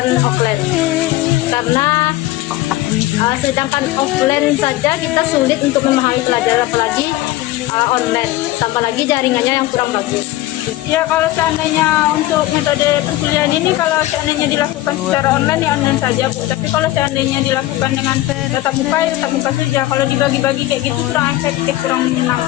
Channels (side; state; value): right; quieter; 16.5 dB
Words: offline karena sedangkan offline saja kita sulit untuk memahami pelajaran, apalagi online, tambah lagi jaringannya yang kurang bagus. Ya, kalau seandainya untuk metode perkuliahan ini, kalau seandainya dilakukan secara online ya online saja Bu. Tapi kalau seandainya dilakukan dengan tatap muka ya tatap muka saja. Kalau dibagi-bagi kayak gitu kurang efektif, kurang